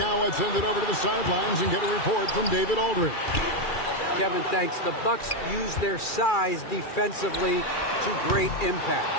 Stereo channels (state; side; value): late; right; 2.3 ms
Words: I'd send it over to the sidelines and get a report from David Aldridge. Kevin, thanks. The Bucks use their size defensively to great impact.